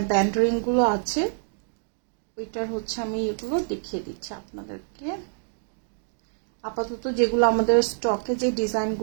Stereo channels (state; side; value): silent; left; digital silence